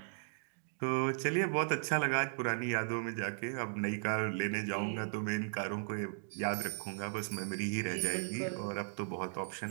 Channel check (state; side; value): silent; left; digital silence